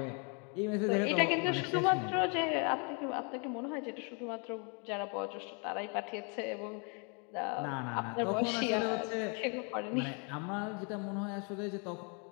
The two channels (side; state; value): right; quieter; 36.0 dB